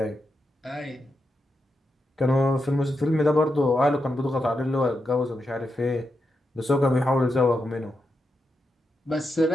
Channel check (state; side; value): normal; both; correlation 0.86